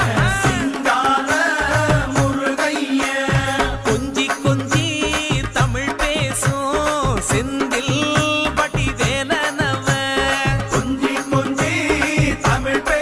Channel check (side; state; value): both; identical; correlation 1.00